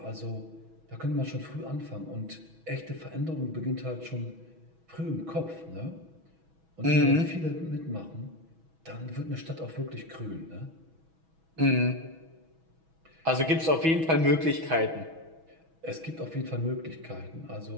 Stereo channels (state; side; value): late; left; 6.2 ms